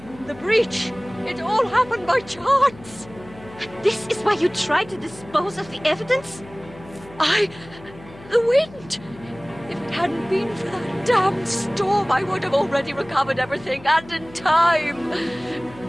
The breach. It all happened by chance. This is why you tried to dispose of the evidence? The wind. If it hadn't been for that damned storm, I would have already recovered everything, and in time.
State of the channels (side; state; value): left; noise; hum, 20 dB below the sound